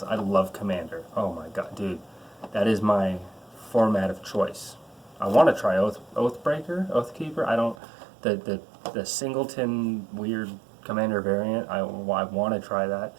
I love Commander. Oh my god, dude, that is my format of choice. I want to try Oathbreaker, Oathkeeper. I don't the singleton weird Commander variant. I want to try that.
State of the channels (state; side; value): drops out; left; at 7.8 s